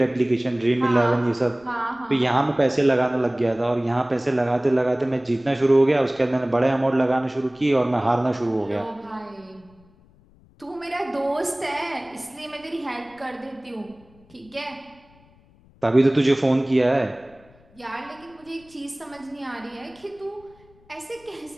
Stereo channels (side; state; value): left; noise; rumble, 29 dB below the sound